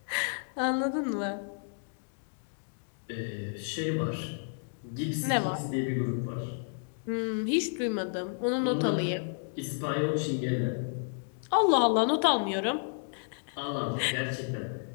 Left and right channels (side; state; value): right; silent; digital silence